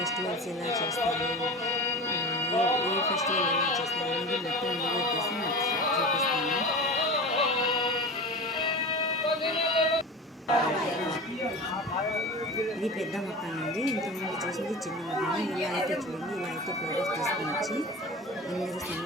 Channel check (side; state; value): both; normal; correlation 0.31